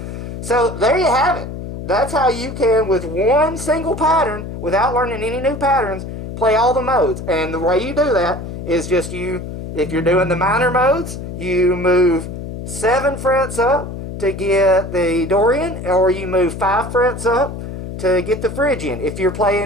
So there you have it. That's how you can, with one single pattern, without learning any new patterns, play all the modes. And the way you do that is just if you're doing the minor modes, you move 7 frets up to get the Dorian, or you move 5 frets up to get the Phrygian. If you're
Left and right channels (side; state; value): left; noise; hum, 8 dB below the sound